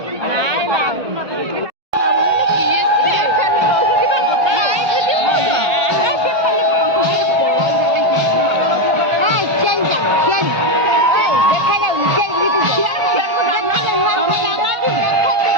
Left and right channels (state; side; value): late; left; 1.5 ms